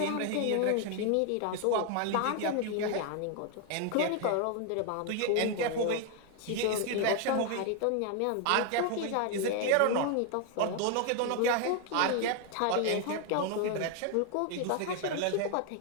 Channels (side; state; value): both; different; correlation 0.01